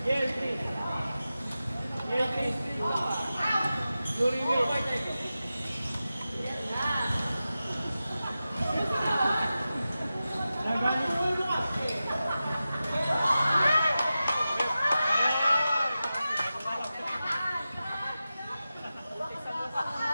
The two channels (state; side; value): inverted; both; correlation -0.93